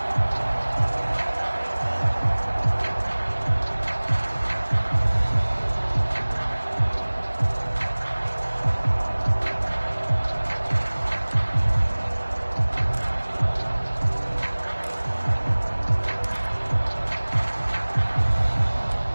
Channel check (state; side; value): inverted; both; correlation -1.00